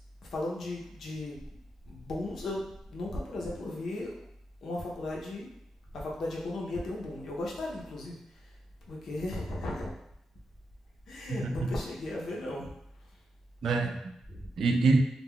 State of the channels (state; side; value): normal; both; correlation 0.85